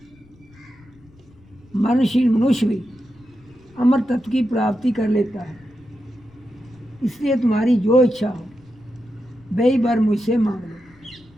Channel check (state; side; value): noise; left; rumble, 27 dB below the sound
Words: मरणशील मनुष्य भी अमर तत्व की प्राप्ति कर लेता है। इसलिए तुम्हारी जो इच्छा हो वही वर मुझसे मांग लो।